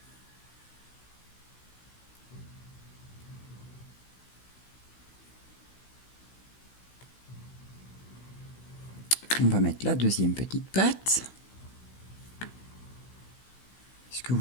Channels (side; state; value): right; late; 16 ms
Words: On va mettre la deuxième petite patte. Ce que